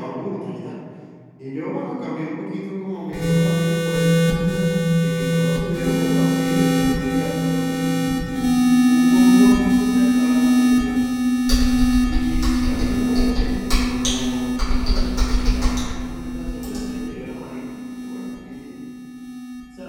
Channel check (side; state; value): both; identical; correlation 1.00